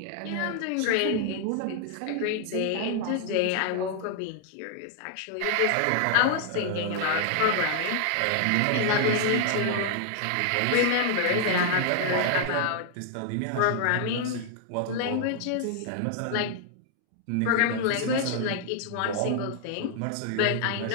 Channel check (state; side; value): different; both; correlation 0.00